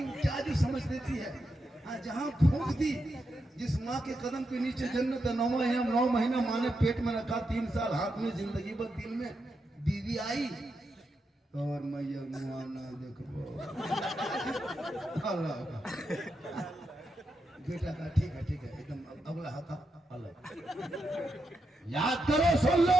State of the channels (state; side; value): normal; both; correlation 0.85